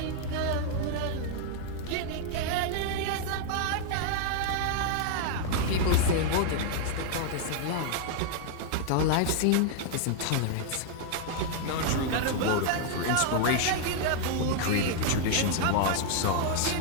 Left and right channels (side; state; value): both; different; correlation 0.00